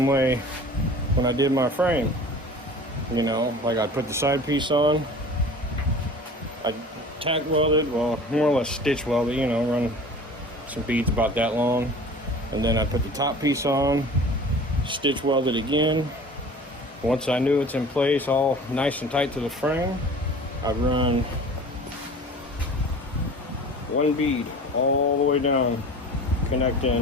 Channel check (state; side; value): normal; both; correlation 0.42